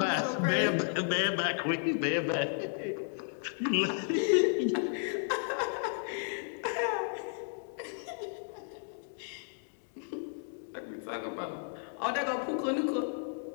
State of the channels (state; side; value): silent; right; digital silence